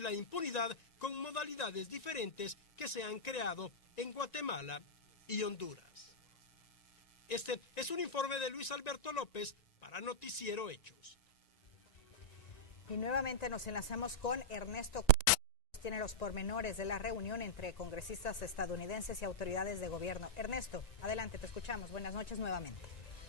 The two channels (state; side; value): late; right; 1.9 ms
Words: impunidad con modalidades diferentes que se han creado en Guatemala y Honduras. Este es un informe de Luis Alberto López para Noticiero Hechos. Y nuevamente nos enlazamos con Ernesto. Tiene los pormenores de la reunión entre congresistas estadounidenses y autoridades de gobierno. Ernesto, adelante, te escuchamos. Buenas noches nuevamente.